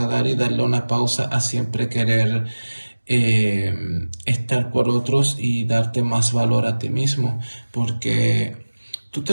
y darle una pausa a siempre querer eh, estar por otros y darte más valor a ti mismo, porque tú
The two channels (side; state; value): both; inverted; correlation -1.00